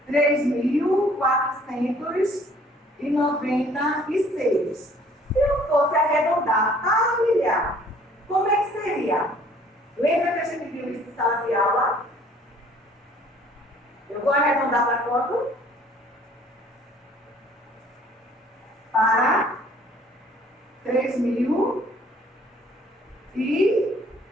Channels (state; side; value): normal; both; correlation 0.57